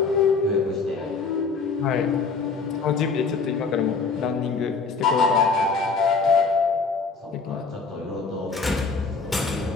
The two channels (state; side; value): quieter; right; 4.6 dB